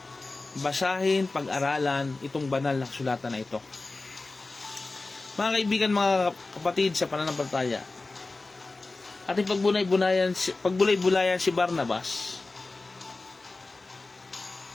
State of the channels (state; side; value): quieter; right; 3.4 dB